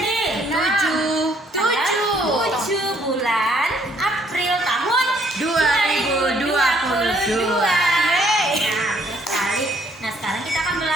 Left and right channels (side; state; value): both; normal; correlation 0.65